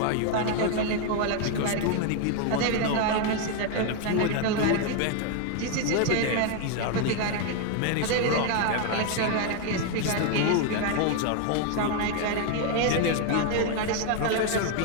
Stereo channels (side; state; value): both; different; correlation 0.01